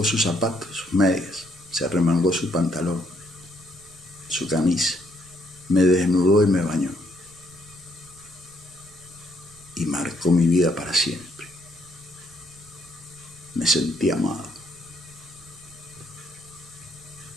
sus zapatos, sus medias, se arremangó su pantalón, su camisa, me desnudó y me bañó. Y marcó mi vida para siempre. Me sentí amado.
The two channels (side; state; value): right; noise; rumble, 26 dB below the sound